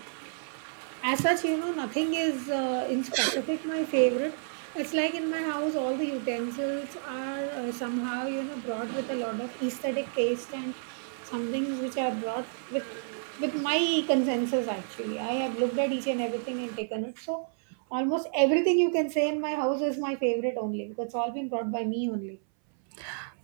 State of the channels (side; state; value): left; silent; 58 dB below the other